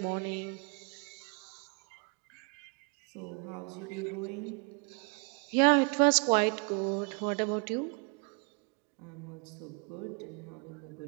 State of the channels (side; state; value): left; quieter; 34.5 dB